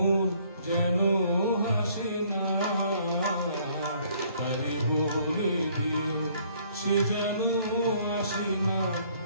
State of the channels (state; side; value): inverted; both; correlation -0.62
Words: যেন হাসে না, তারে বলে দিও সে যেন আসে না